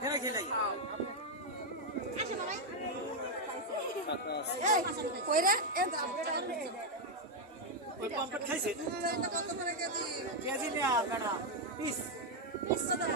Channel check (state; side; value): normal; both; correlation 0.01